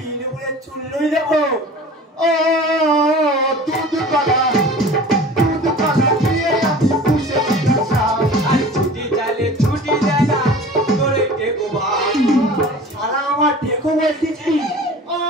বলে চুল্লই দেবো ও দুধ পালা দিয়ে আমি পুষে দিলাম আর ছুটি চালে ছুটি দেয় না তোরে টেকো ভাই সারা আমার দেখো বলতেছি ও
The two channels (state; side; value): normal; both; correlation 0.41